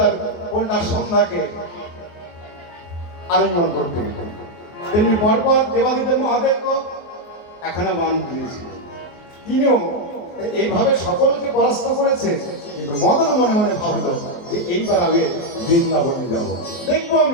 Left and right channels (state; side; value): late; right; 23 ms